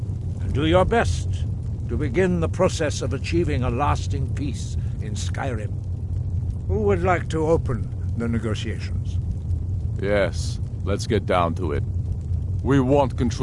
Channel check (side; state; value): both; identical; correlation 1.00